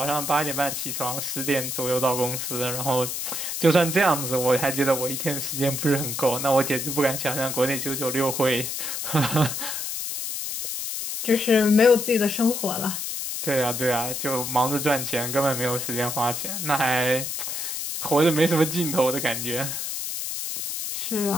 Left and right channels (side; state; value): left; noise; hiss, 4 dB below the sound